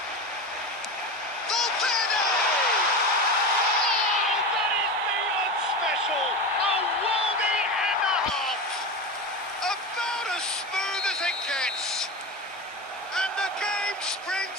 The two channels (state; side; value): normal; both; correlation 0.24